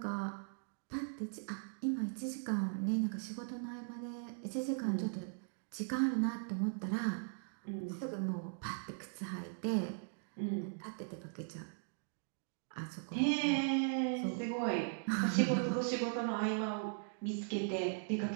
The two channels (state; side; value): silent; left; digital silence